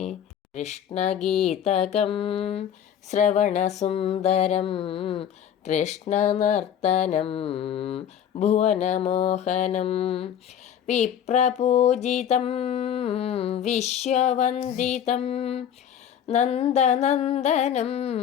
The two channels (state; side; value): quieter; right; 9.3 dB